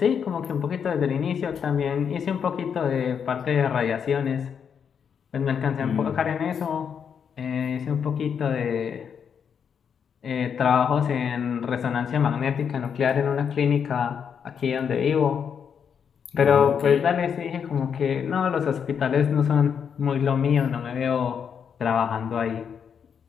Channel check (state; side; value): quieter; right; 7.3 dB